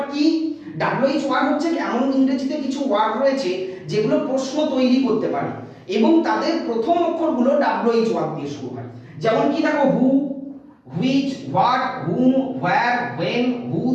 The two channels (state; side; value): identical; both; correlation 1.00